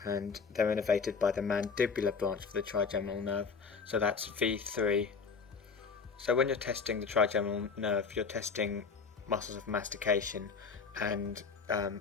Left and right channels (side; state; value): right; quieter; 5.3 dB